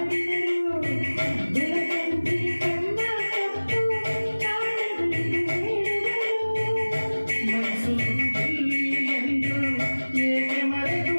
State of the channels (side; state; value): both; inverted; correlation -1.00